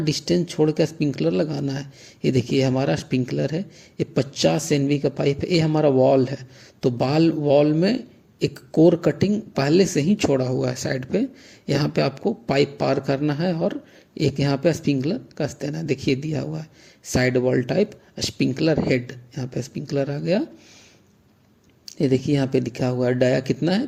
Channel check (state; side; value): identical; both; correlation 1.00